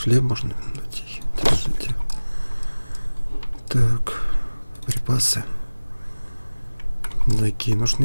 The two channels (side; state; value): both; inverted; correlation -1.00